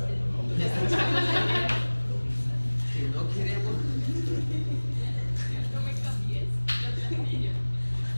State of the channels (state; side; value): inverted; both; correlation -1.00